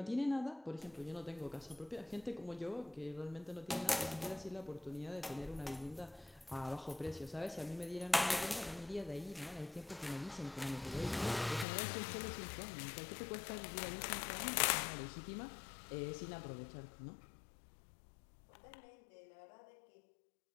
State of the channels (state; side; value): drops out; right; at 11.7 s